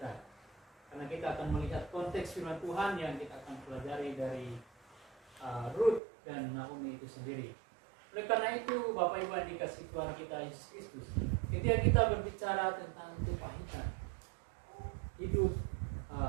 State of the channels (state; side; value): drops out; left; at 6.0 s